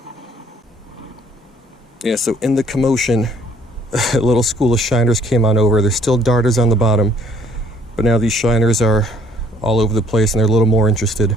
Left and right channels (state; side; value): normal; both; correlation 0.61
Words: Yeah, so in the commotion, a little school of shiners came on over. There's still darters on the bottom, but now these shiners are all over the place and they're a little more